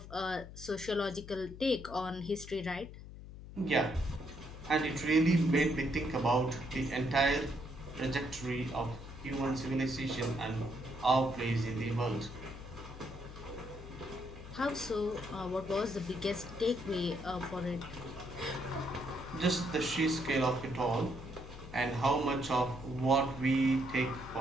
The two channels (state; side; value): noise; left; hum, 13 dB below the sound